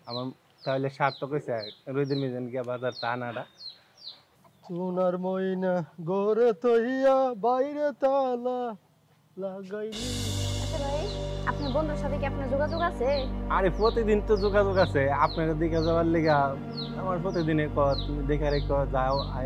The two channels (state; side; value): identical; both; correlation 1.00